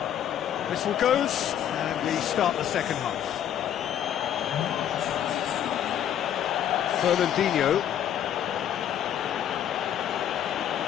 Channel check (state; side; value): quieter; right; 10.2 dB